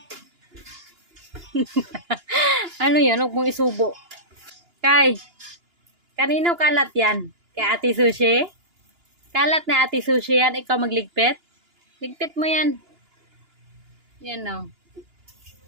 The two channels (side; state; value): left; late; 2.9 ms